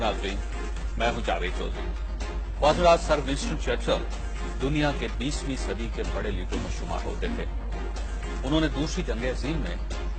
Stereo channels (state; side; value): identical; both; correlation 1.00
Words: नाज़रीन, मैं हूं जावेद चौधरी। वाज़रात सर विंस्टन चर्चिल दुनिया के 20वीं सदी के बड़े लीडरों में शुमार होते थे। उन्होंने दूसरी जंग अज़ीम में